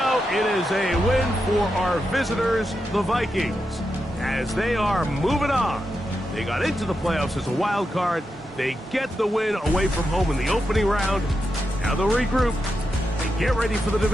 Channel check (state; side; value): normal; both; correlation 0.87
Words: it is a win for our visitors, the Vikings, as they are moving on. They got into the playoffs as a wild card. They get the win away from home in the opening round. Now they'll regroup and get ready for the